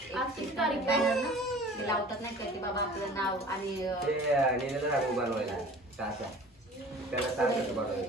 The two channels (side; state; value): both; normal; correlation 0.44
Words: बॅनर ना ते लावतात नाही का, की बाबा आपलं नाव आणि ते सांगू बनवायला सासा, त्याला सांगायचं